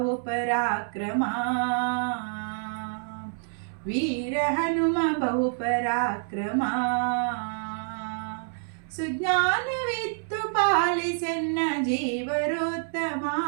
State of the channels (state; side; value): silent; left; 60 dB below the other